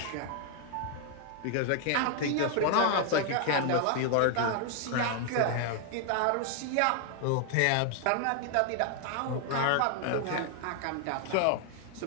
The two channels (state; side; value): different; both; correlation 0.00